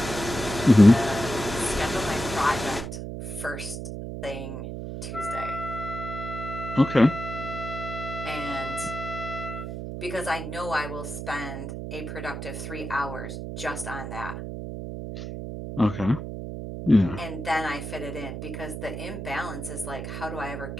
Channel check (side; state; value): right; noise; hum, 7 dB below the sound